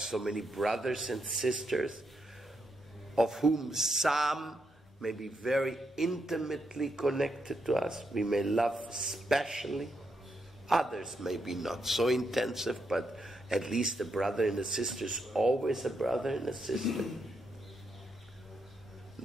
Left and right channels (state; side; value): normal; both; correlation 0.81